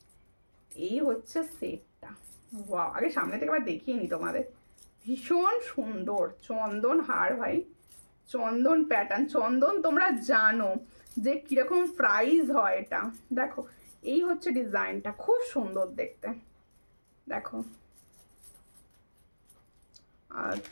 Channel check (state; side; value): inverted; both; correlation -1.00